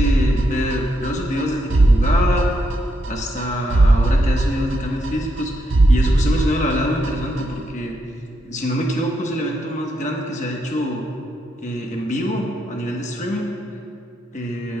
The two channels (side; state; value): both; normal; correlation 0.80